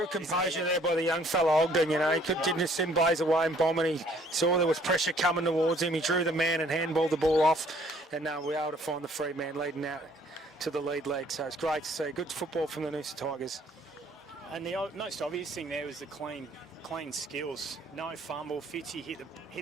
composure there by the young fella Ogden, He didn't just send Blaze away and bomb, and he saw there was pressure coming towards him. He drew the man and handballed the ball off, and we were able to find the free man leading out to the lead leg. So it's great to see. Good football from the Noosa Tigers. And the most obvious thing there was the clean skills. No fumble. Fitzy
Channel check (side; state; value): both; normal; correlation 0.60